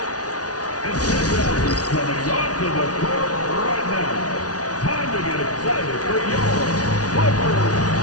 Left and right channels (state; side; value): late; right; 0.68 ms